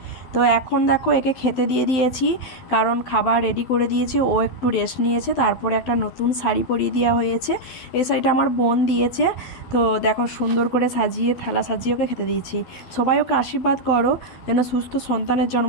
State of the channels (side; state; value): right; late; 12 ms